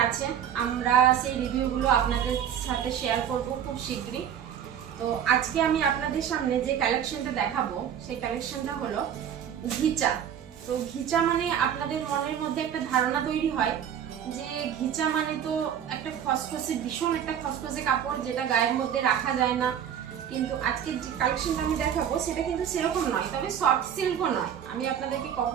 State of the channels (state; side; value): quieter; left; 9.1 dB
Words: আছে, আমরা সেই রিভিউগুলো আপনাদের সাথে শেয়ার করব খুব শীঘ্রই। তো আজকে আমি আপনাদের সামনে যে কালেকশনটা দেখাবো সেই কালেকশনটা হলো ঘিচা। তো ঘিচা মানে আপনাদের মনের মধ্যে একটা ধারণা তৈরি হয় যে ঘিচা মানে তো একটা খসখসে, ভীষণ একটা খসখসে কাপড় যেটা গায়ের মধ্যে রাখা যায় না। কিন্তু আজকে যে কালেকশনটা আমি দেখাবো সেটা কিন্তু সেরকম নয়, তবে সফট সিল্কও নয়। আমি আপনাদেরকে